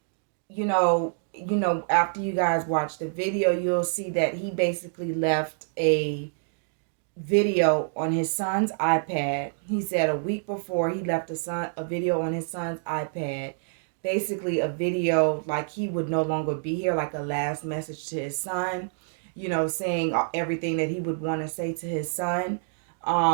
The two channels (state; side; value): silent; left; digital silence